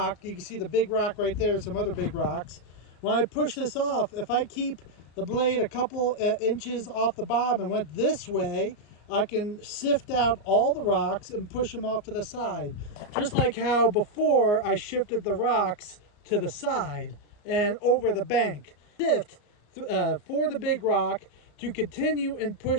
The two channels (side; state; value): right; late; 34 ms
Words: you can see the big rock right there, some other big rocks. When I push this off, if I keep the blade a couple inches off the bottom and went this way, I can sift out all the rocks and push them off to the side. Just like how before I shifted the rocks to the side and over the bank. Sift for the big rock to continue and